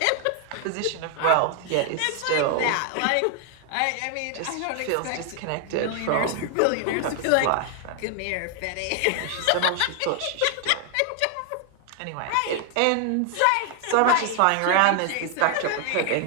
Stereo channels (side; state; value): both; different; correlation 0.00